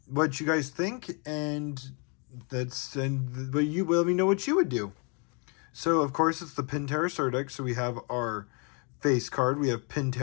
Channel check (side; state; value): right; quieter; 35.3 dB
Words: you guys think, and but you let me know what you would do. So of course it's the Penterror starter deck. So we have our face card. We have